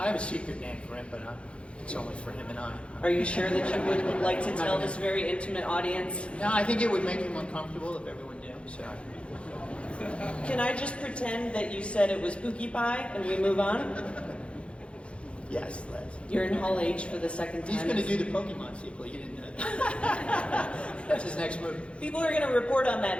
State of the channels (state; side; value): late; right; 0.059 ms